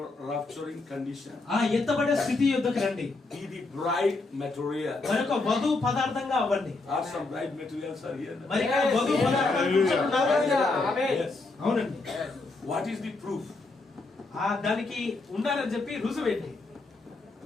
rapturing condition. ఆ ఎత్తబడే స్థితి యొద్దకు రండి. Be the bright material. మరొక వధు పదార్థంగా అవ్వండి. Are some bright materials are here? మరి ఇక్కడ వధు పదార్థాలు కూర్చుంటున్నారా? అవునండి. What is the proof దానికి ఉండాలని చెప్పి రుజువేంటి?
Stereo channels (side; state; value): right; quieter; 3.4 dB